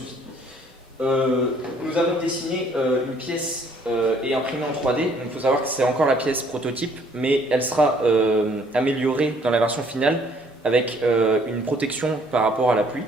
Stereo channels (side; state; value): both; normal; correlation 0.61